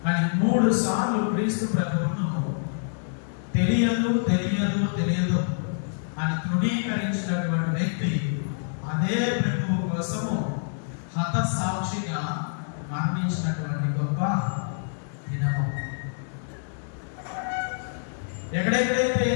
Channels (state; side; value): silent; right; digital silence